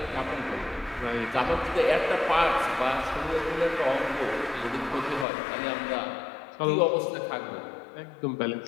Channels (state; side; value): drops out; right; at 5.2 s